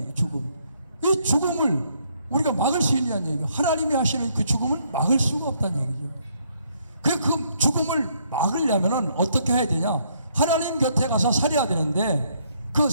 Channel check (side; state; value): both; inverted; correlation -0.70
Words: 죽음. 이 죽음을 우리가 막을 수 있냐는 얘기예요. 하나님이 하시는 그 죽음을 막을 수가 없다는 얘기죠. 그 죽음을 막으려면 어떻게 해야 되냐? 하나님 곁에 가서 살아야 되는데, 그